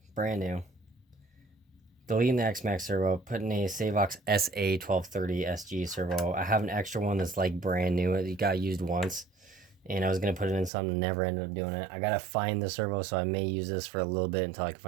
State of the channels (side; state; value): left; drops out; at 10.7 s